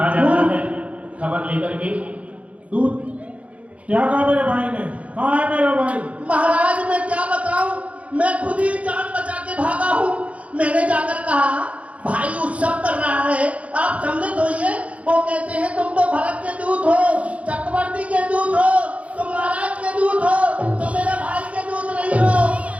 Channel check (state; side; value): late; left; 0.065 ms